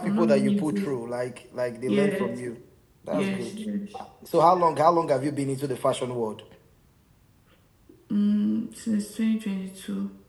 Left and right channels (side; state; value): both; identical; correlation 1.00